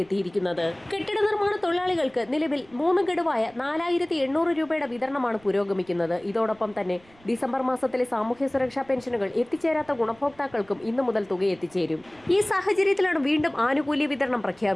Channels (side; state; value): right; noise; rumble, 28 dB below the sound